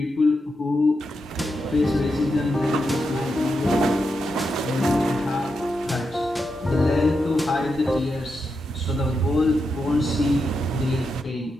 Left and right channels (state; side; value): normal; both; correlation 0.86